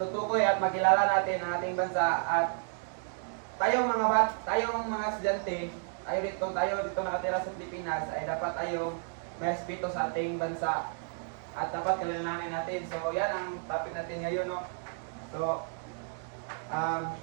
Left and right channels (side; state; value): left; silent; 57 dB below the other